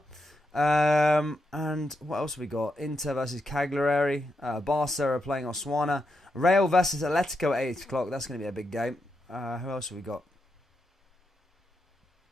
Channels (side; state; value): both; normal; correlation 0.84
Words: And what else have we got? Inter versus Cagliari. Barca are playing Osasuna. Real versus Atletico at 8 o'clock. That's going to be a big game. Who else have we got?